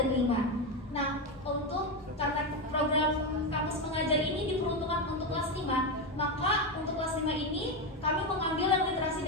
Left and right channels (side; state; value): both; normal; correlation 0.11